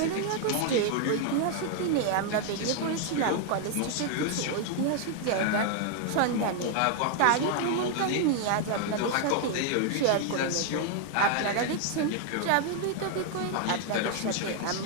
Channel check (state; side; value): different; both; correlation 0.00